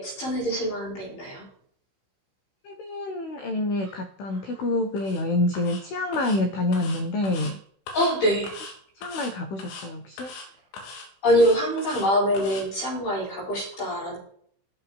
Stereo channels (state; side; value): late; right; 15 ms